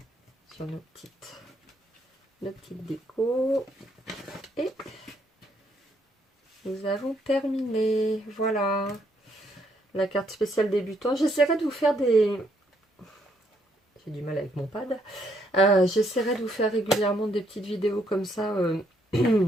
sur nos petites décos. Et nous avons terminé. Voilà. La carte spéciale débutant. J'essaierai de vous faire des... J'ai du mal avec mon pad. J'essaierai de vous faire régulièrement des petites vidéos comme ça.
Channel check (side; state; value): both; normal; correlation 0.72